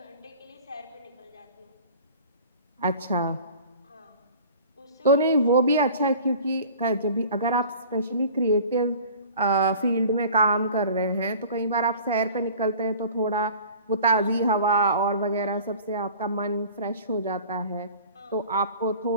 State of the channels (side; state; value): both; inverted; correlation -0.44